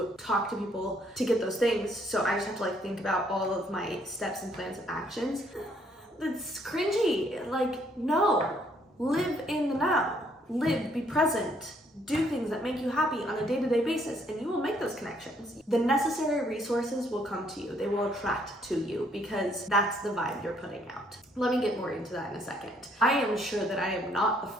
talk to people to get those things. So I just have to like think about all of my steps and plans and actions. It's cringy. Like, no, live in the now. Live, be present, do things that make you happy on a day-to-day basis, and you will make those connections. The necessary resources will come to you. They will attract to you because that's the vibe you're putting out. Let me get more into that in a second. I am sure that I am not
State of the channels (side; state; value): both; normal; correlation 0.67